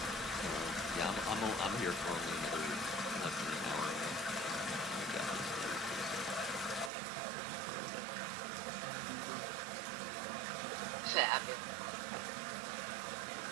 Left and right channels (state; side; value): drops out; left; at 6.9 s